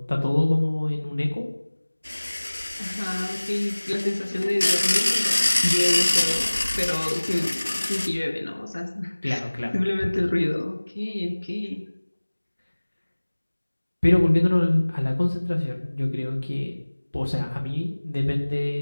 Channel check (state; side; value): inverted; both; correlation -1.00